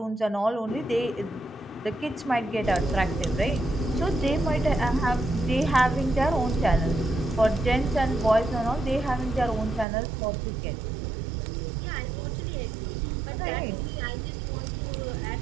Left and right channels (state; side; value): drops out; left; at 9.9 s